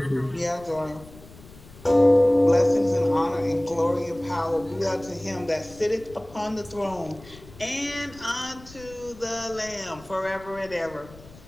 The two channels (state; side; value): noise; left; rumble, 20 dB below the sound